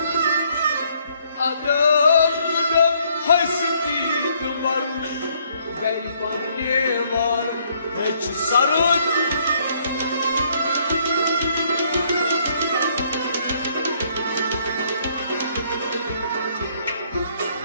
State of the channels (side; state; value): both; inverted; correlation -0.67